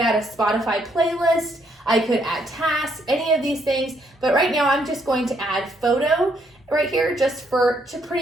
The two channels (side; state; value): both; normal; correlation 0.72